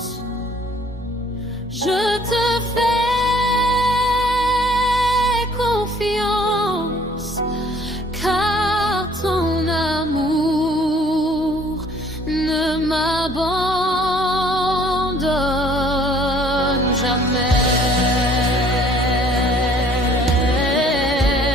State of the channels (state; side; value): normal; both; correlation 0.58